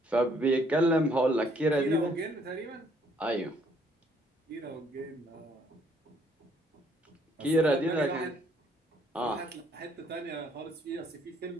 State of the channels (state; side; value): normal; both; correlation 0.65